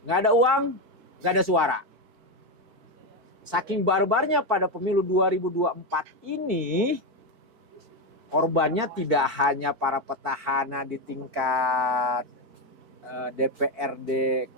Nggak ada uang, nggak ada suara. Saking barbarnya pada pemilu 2024 ini, korbannya tidak hanya para petahana di tingkat DPRD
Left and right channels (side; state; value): left; late; 4.5 ms